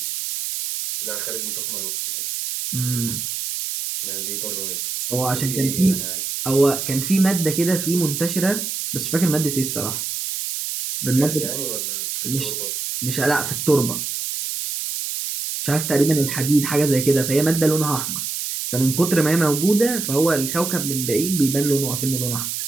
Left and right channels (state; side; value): noise; right; hiss, 4 dB below the sound